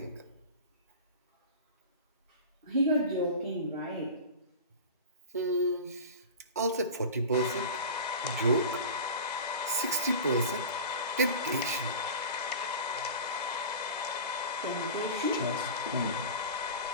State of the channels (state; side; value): inverted; both; correlation -0.32